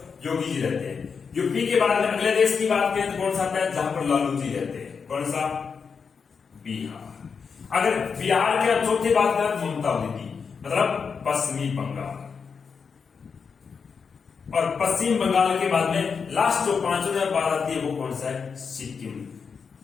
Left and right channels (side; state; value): right; quieter; 5.8 dB